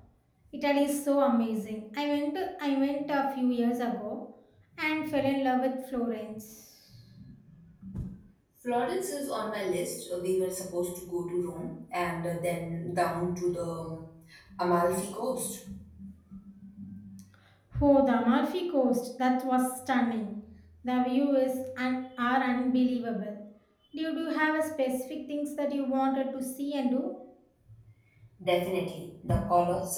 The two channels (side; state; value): both; identical; correlation 1.00